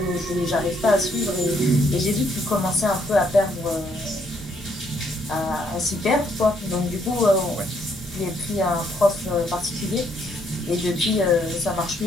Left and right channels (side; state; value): both; normal; correlation 0.71